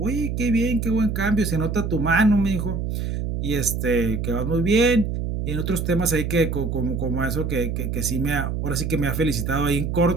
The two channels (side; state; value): right; noise; hum, 2 dB below the sound